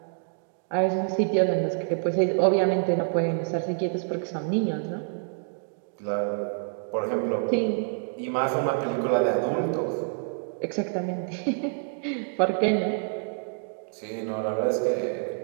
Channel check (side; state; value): left; silent; digital silence